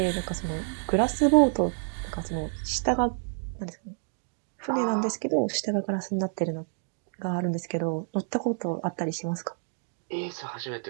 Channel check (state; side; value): silent; left; 59 dB below the other